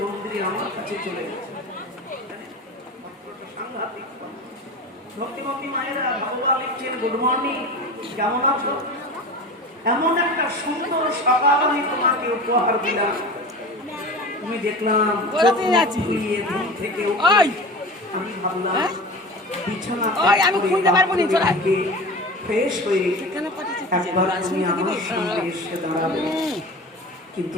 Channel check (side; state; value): both; normal; correlation 0.32